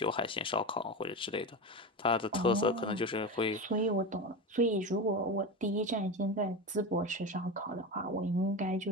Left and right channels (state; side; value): normal; both; correlation 0.22